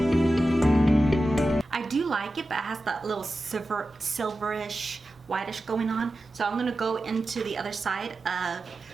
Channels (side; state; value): both; normal; correlation 0.93